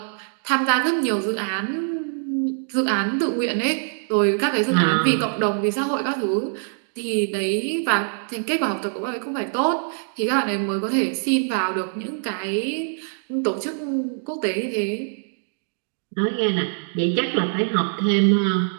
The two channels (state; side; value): silent; left; 63 dB below the other